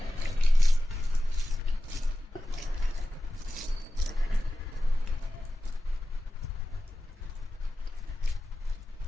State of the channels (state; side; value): normal; both; correlation 0.94